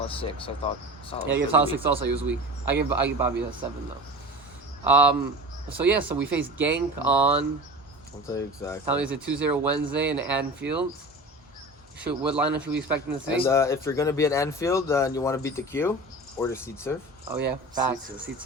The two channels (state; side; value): normal; both; correlation 0.35